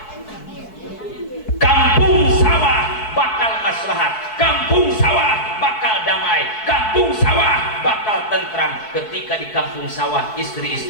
Kampung sawah bakal maslahat, kampung sawah bakal damai, kampung sawah bakal tentram. Ketika di kampung sawah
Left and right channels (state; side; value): late; right; 4.6 ms